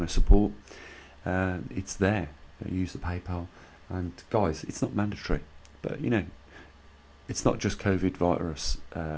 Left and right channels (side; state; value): both; identical; correlation 1.00